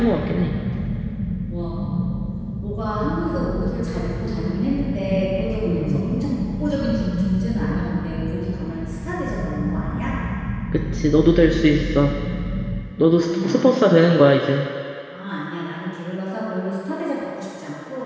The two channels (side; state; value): both; identical; correlation 1.00